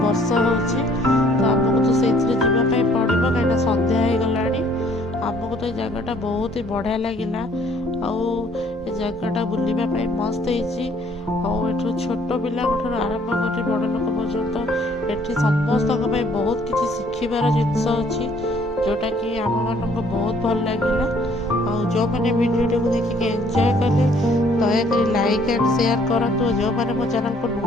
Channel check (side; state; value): both; normal; correlation 0.61